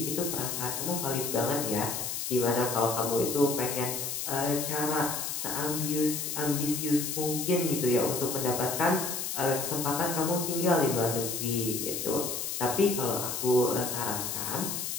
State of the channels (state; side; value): noise; left; hiss, 3 dB below the sound